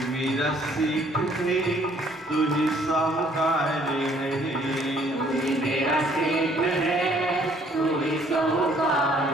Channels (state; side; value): normal; both; correlation 0.61